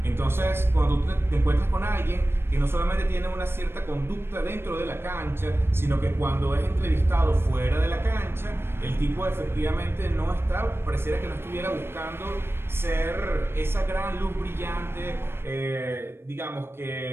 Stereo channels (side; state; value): left; late; 0.12 ms